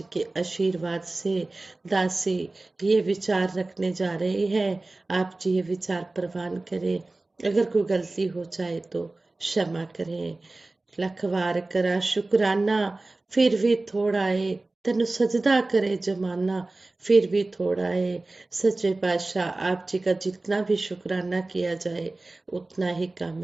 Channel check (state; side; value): quieter; left; 3.1 dB